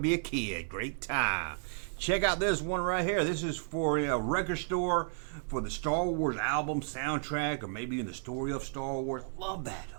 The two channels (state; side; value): silent; left; digital silence